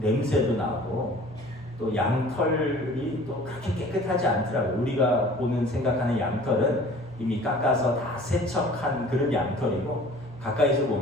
나고, 또 양털이 또 그렇게 깨끗하지 않더라고요. 우리가 생각하는 양털은 이미 깎아서 다 세척한 그런 양털이고, 가까이서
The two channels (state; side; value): normal; both; correlation 0.48